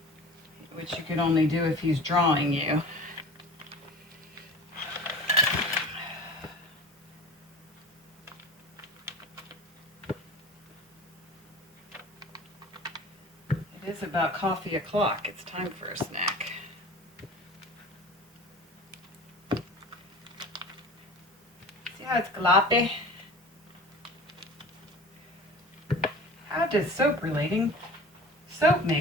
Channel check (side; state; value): both; normal; correlation 0.39